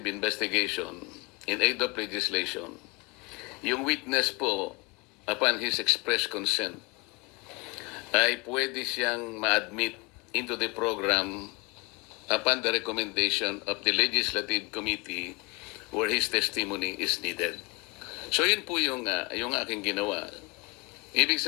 investigation in aid of legislation, yung witness po, upon his express consent, ay pwede siyang ma-admit into the program upon the recommendation of the Legislative Committee where his testimony is needed. So yun po yung aking ginawa. Ibig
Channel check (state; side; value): quieter; right; 27.5 dB